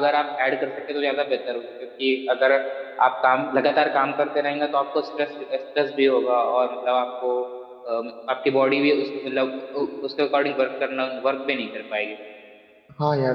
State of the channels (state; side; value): identical; both; correlation 1.00